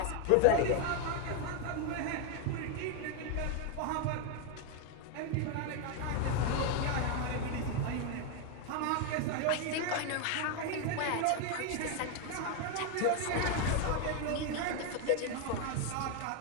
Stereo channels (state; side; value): different; both; correlation 0.01